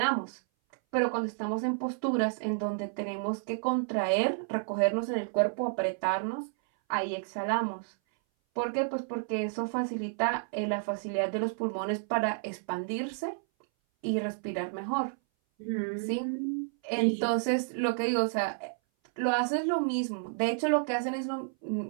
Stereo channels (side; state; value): left; silent; 57 dB below the other